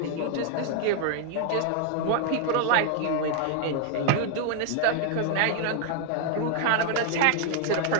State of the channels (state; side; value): different; both; correlation 0.00